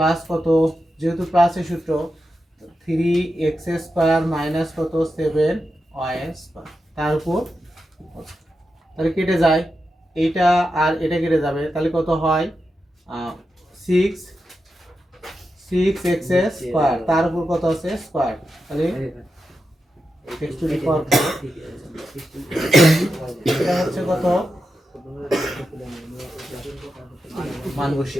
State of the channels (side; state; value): both; normal; correlation 0.89